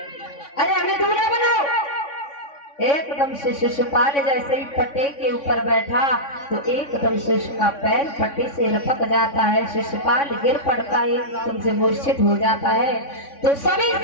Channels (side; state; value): right; late; 3.5 ms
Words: अरे हमें दूल्हा बनाओ। एकदम से शिशुपाल जैसे ही पट्टे के ऊपर बैठा तो एकदम से उसका पैर पट्टे से लपक जाता है। शिशुपाल गिर पड़ता है, एकदम से मूर्छित हो जाता है। तो सभी